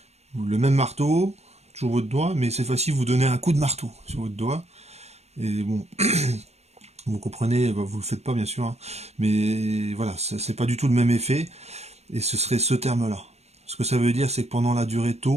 le même marteau, toujours votre doigt, mais cette fois-ci, vous donnez un coup de marteau sur votre doigt. Et bon, vous comprenez, bah, vous le faites pas, bien sûr, hein, mais voilà, c'est pas du tout le même effet, et ce serait ce terme-là. Ce que ça veut dire, c'est que pendant la durée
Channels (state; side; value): late; left; 0.31 ms